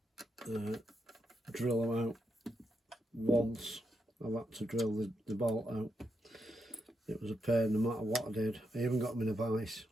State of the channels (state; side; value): normal; both; correlation 0.83